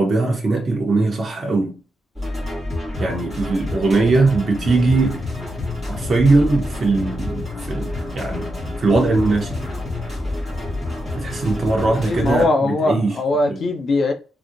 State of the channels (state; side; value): normal; both; correlation 0.86